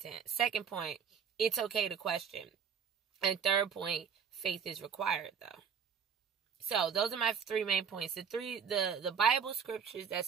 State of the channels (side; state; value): left; quieter; 6.9 dB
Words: Second point, it's okay to question. And third point, faith is required, though. So those are my 3 main points. The Bible scriptures that